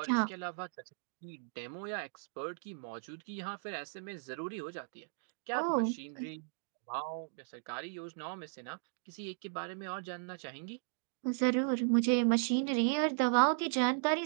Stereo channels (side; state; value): left; silent; digital silence